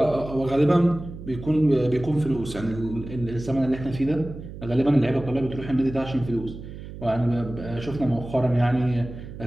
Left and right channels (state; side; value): noise; right; hum, 12 dB below the sound